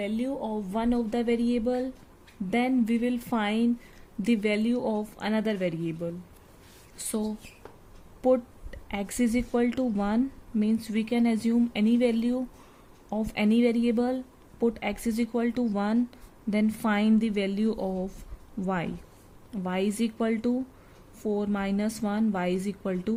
of one of the variable, then we will find the value of another variable. So put x is equal to 1 means we can assume any value of any variable, put x is equal to 1, then find the value of y. Y is equal to 4 minus 1, y is equal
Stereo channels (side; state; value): both; identical; correlation 1.00